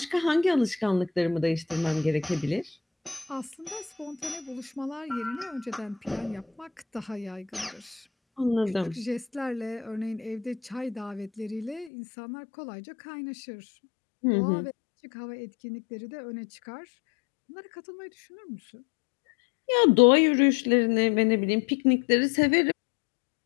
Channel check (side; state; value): right; drops out; at 11.9 s